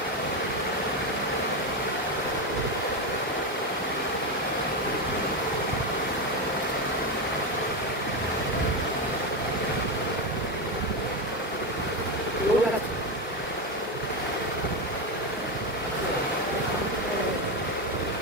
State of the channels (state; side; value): normal; both; correlation 0.12